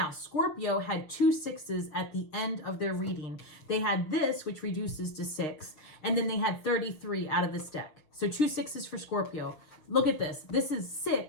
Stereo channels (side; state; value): right; late; 6.6 ms